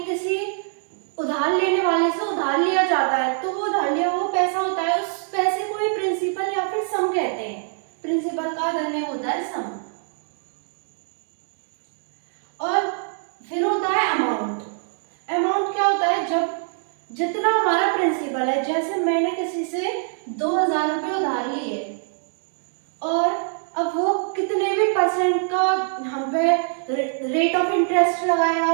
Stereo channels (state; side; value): silent; left; 63 dB below the other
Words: किसी उधार लेने वाले से उधार लिया जाता है तो वो उधार लिया वो पैसा होता है, उस पैसे को ही प्रिंसिपल या फिर सम कहते हैं. प्रिंसिपल का अदर नेम होता है सम. और फिर होता है अमाउंट. अमाउंट क्या होता है, जब जितना हमारा प्रिंसिपल है, जैसे मैंने किसी से 2000 रुपये उधार लिए और अब वो कितने भी परसेंट का हम पे रेट ऑफ इंटरेस्ट